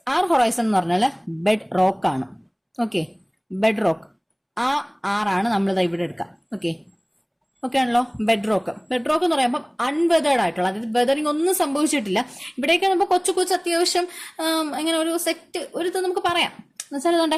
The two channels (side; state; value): both; identical; correlation 1.00